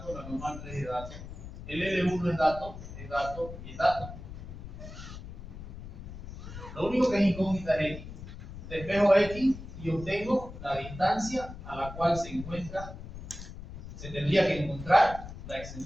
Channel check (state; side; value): noise; left; rumble, 12 dB below the sound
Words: la normal 3 es dato, el L1 es dato y es dato. Lo único que es incógnita es X. Despejo X y obtengo la distancia a la cual se tendría que encontrar